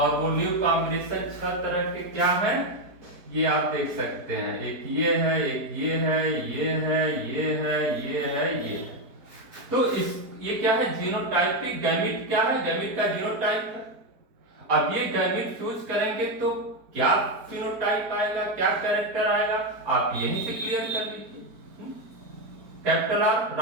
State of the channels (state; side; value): late; left; 4.7 ms